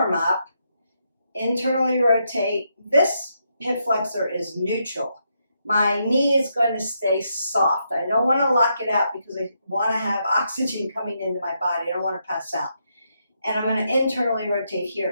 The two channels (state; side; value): inverted; both; correlation -0.80